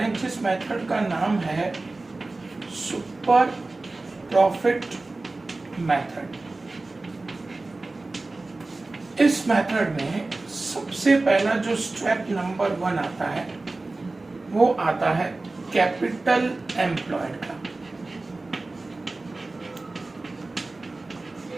हैं जिस मेथड का नाम है सुपर प्रॉफिट मेथड। इस मेथड में सबसे पहला जो स्टेप नंबर 1 आता है वो आता है कैपिटल एम्प्लॉयड का।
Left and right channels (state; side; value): quieter; left; 3.2 dB